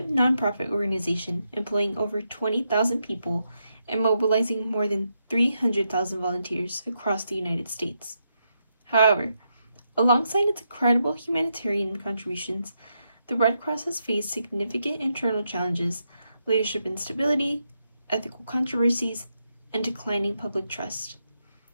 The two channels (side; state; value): both; inverted; correlation -0.82